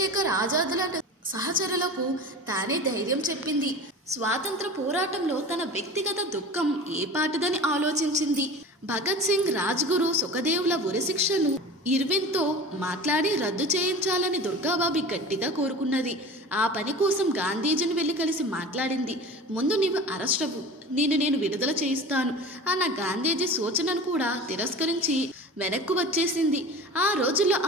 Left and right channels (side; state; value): both; normal; correlation 0.36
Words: ఆజాద్ లాంటి సహచరులకు తానే ధైర్యం చెప్పింది. స్వాతంత్ర పోరాటంలో తన వ్యక్తిగత దుఃఖం ఏ పాటిదని ఆలోచించింది. భగత్ సింగ్, రాజ్గురు, సుఖదేవ్ల ఉరిశిక్షను ఇర్విన్తో మాట్లాడి రద్దు చేయించాలని దుర్గాబాబి గట్టిగా కోరుకున్నది. ఆ పని కోసం గాంధీజీని వెళ్లి కలిసి మాట్లాడింది. ముందు నీవు అరెస్ట్ అవ్వు, నేను విడుదల చేయిస్తాను అన్న గాంధీజీ సూచనను కూడా తిరస్కరించి వెనక్కు వచ్చేసింది. ఆ రోజుల్లో